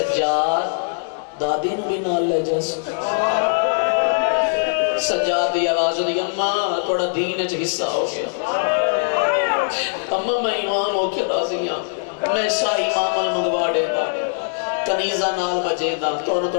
دادی نو بھی نال لے جیسے سجاد دی آواز دی اممہ توڑا دین اچھ حصہ ہو گیا اممہ میں ایمان ہو کے راضیاں میں شاہی مامل منگوا دے دا کنیزہ نال بجے دا تو انہوں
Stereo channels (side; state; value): right; silent; digital silence